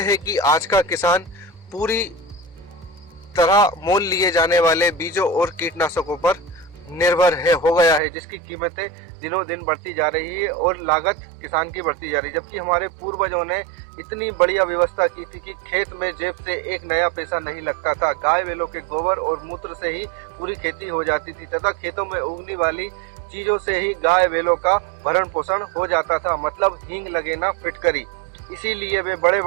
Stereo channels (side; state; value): left; drops out; at 8.0 s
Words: है कि आज का किसान पूरी तरह मोल लिए जाने वाले बीजों और कीटनाशकों पर निर्भर हो गया है, जिसकी कीमतें दिनों दिन बढ़ती जा रही है और लागत किसान की बढ़ती जा रही है। जबकि हमारे पूर्वजों ने इतनी बढ़िया व्यवस्था की थी कि खेत में जेब से एक नया पैसा नहीं लगता था। गाय बैलों के गोबर और मूत्र से ही पूरी खेती हो जाती थी तथा खेतों में उगने वाली चीजों से ही गाय बैलों का भरण पोषण हो जाता था, मतलब हींग लगे ना फिटकरी। इसीलिए वे बड़े